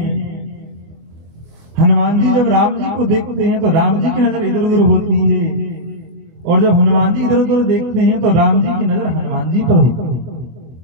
हनुमान जी जब राम जी को देखते हैं तो राम जी की नजर इधर उधर होती है, और जब हनुमान जी इधर उधर देखते हैं तो राम जी की नजर हनुमान जी पर होती है।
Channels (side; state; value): left; late; 24 ms